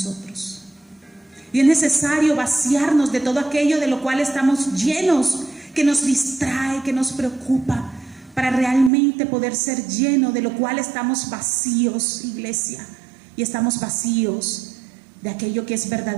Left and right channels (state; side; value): drops out; left; at 8.9 s